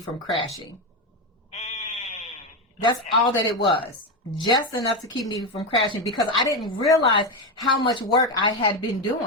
crashing. That's all that it was. Just enough to keep me from crashing because I didn't realize how much work I had been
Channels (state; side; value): normal; both; correlation 0.12